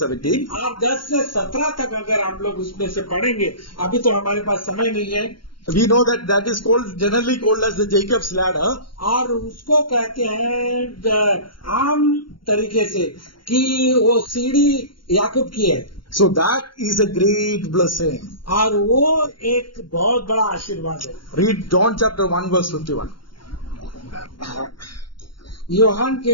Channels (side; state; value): right; late; 0.73 ms